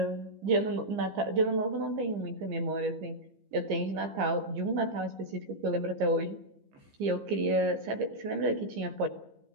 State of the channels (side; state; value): left; late; 15 ms